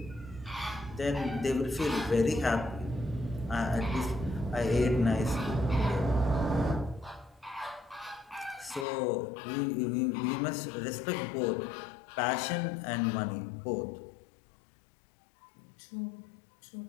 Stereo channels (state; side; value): drops out; right; at 8.8 s